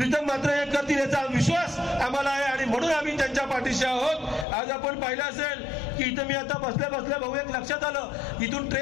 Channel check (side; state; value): right; drops out; at 4.5 s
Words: म्हात्रे हे करतील याचा विश्वास आम्हाला आहे आणि म्हणून आम्ही त्यांच्या पाठीशी आहोत. आज आपण पाहिलं असेल की इथं मी आता बसल्या भाऊ एक लक्षात आलं, इथून